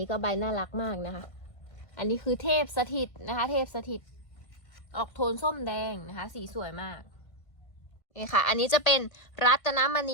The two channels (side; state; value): right; late; 1.5 ms